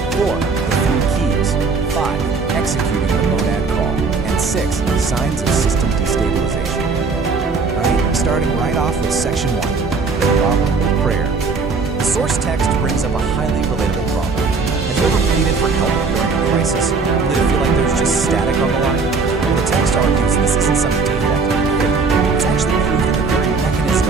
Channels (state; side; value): quieter; left; 4.5 dB